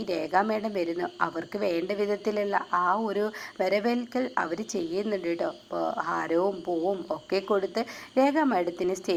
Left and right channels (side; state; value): both; identical; correlation 1.00